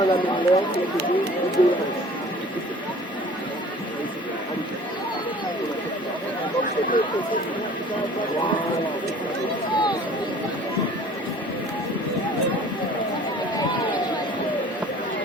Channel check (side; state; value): both; normal; correlation 0.48